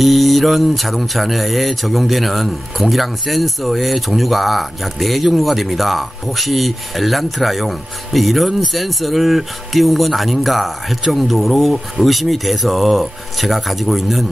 자동차 내에 적용되는 공기량 센서의 종류가 약 4종류가 됩니다. 혹시 엘란트라용 이런 센서를 띄운 건 아닌가 할 정도로 의심이 돼서 제가 가지고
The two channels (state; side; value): normal; both; correlation 0.96